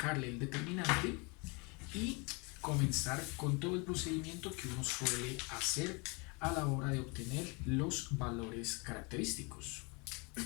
el determinante y comenzar con todo el procedimiento que uno suele hacer a la hora de obtener los valores característicos.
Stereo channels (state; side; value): quieter; right; 30.3 dB